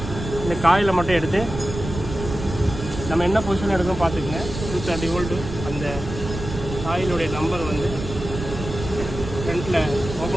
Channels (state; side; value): noise; right; rumble, 8 dB below the sound